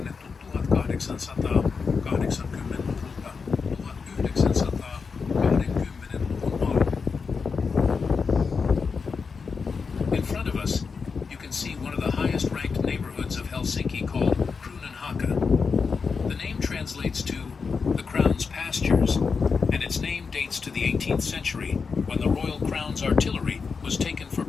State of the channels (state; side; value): quieter; right; 5.2 dB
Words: 1880-luvulta 1920-luvun alkuun. In front of us, you can see one of the highest ranked neighborhoods of Helsinki called Kruunenhaka. The name translates to the Crown's pastures, and its name dates to the 18th century when the Royal Crown's artillery was taken for